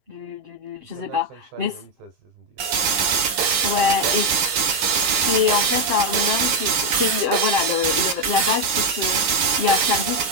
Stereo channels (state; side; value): late; left; 8.0 ms